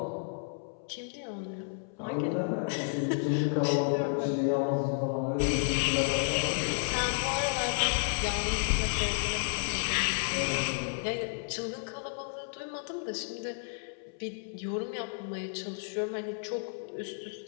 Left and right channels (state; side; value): silent; right; 57 dB below the other